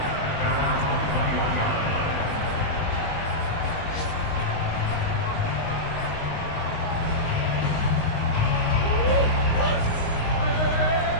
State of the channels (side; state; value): right; late; 19 ms